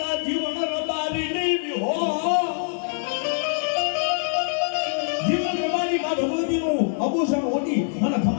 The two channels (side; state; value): right; silent; digital silence